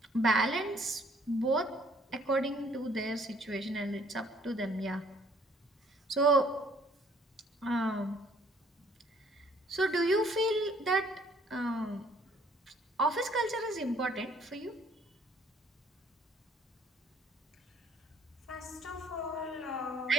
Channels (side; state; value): both; normal; correlation 0.61